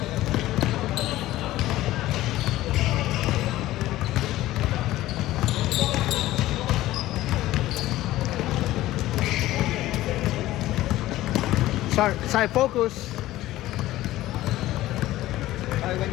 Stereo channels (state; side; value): quieter; right; 15.8 dB